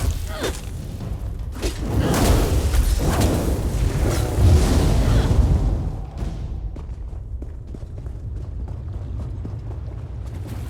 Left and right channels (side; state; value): both; identical; correlation 1.00